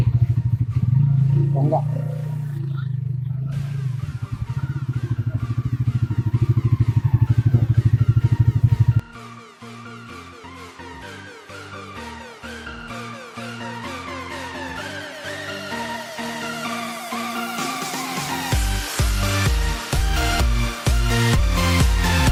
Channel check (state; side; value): identical; both; correlation 1.00